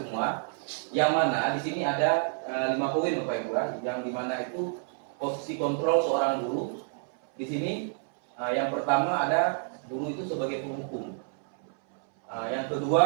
semua. Yang mana di sini ada 5 poin Bapak Ibu, yang dimana itu posisi kontrol seorang guru. Di sini yang pertama ada guru itu sebagai penghukum. Yang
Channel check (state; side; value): silent; left; 59 dB below the other